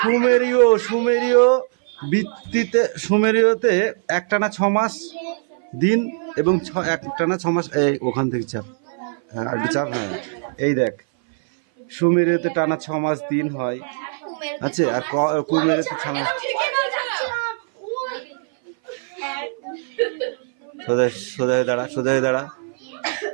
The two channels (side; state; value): left; silent; 58 dB below the other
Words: সুমেরীয় ভিত্তিতে সুমেরীয়তে একটানা 6 মাস দিন এবং একটানা 6 মাস। এই ওখান থেকে চাপ, হ্যাঁ একটু চাপ। হ্যাঁ এই দেখ, সুমেরীয়তে টানা 6 মাস দিন হয়। আচ্ছা, আর কুমেরীয়তে 6 মাস। সোজা হয়ে দাঁড়া, সোজা হয়ে দাঁড়া।